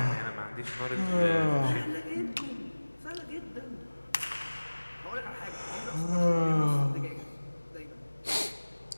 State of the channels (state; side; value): inverted; both; correlation -1.00